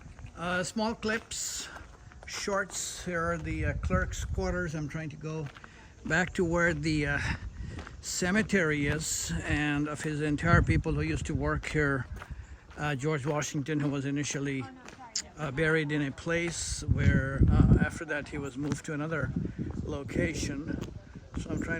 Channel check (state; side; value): identical; both; correlation 1.00